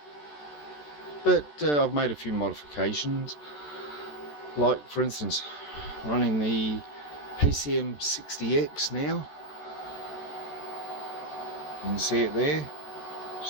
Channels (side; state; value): right; late; 14 ms